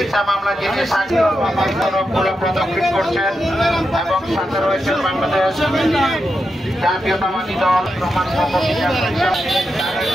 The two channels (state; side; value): normal; both; correlation 0.87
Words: মামলা যিনি সাক্ষ্যগুলো প্রদক্ষিণ করছেন এবং সাথে রয়েছেন বাংলাদেশ জাতীয়তাবাদী দল প্রমাণ